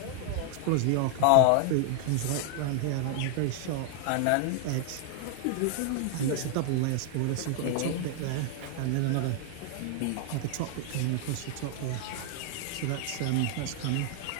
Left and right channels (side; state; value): both; different; correlation 0.00